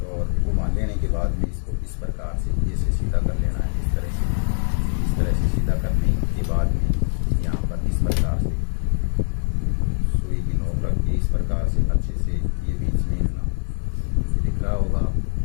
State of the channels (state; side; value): silent; right; digital silence